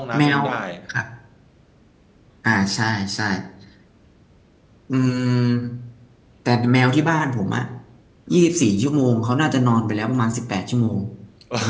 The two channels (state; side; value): identical; both; correlation 1.00